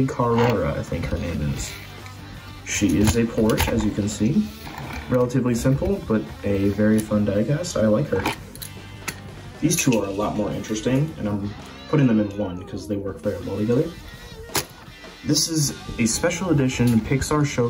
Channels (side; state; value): both; identical; correlation 1.00